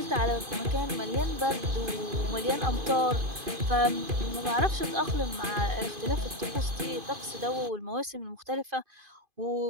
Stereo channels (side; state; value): left; late; 2.5 ms